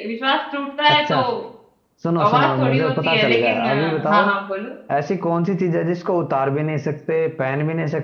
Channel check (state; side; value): identical; both; correlation 1.00